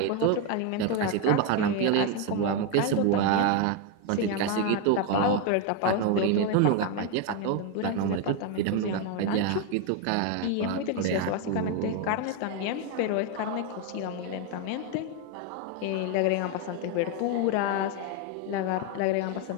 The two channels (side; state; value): both; different; correlation 0.02